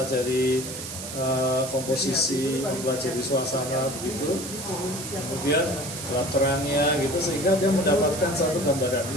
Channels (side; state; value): right; noise; hiss, 9 dB below the sound